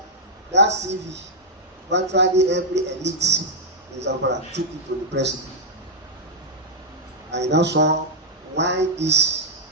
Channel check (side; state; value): both; normal; correlation -0.05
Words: that CV, virtually every elite in Zamfara took it to the president. I now saw why these